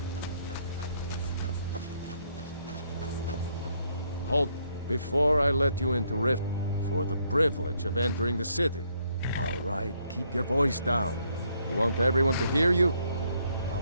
Halt before I let you into Rift for the privilege of entering the city. All right, keep your voice down. You want everyone to hear you?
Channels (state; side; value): inverted; both; correlation -0.72